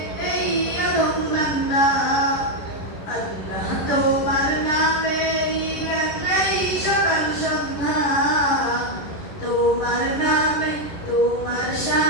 এই আদম বান্দা। আল্লাহ তোমার নামেরই গান গাই সকাল সন্ধ্যা, তোমার নামে তোমার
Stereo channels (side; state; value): right; late; 11 ms